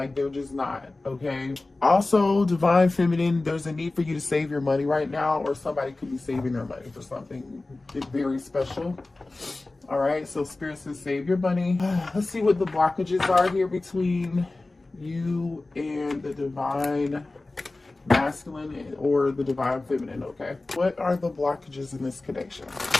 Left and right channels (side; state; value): right; quieter; 3.1 dB